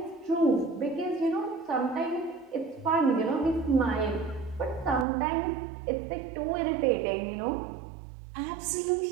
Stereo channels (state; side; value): drops out; left; at 5.1 s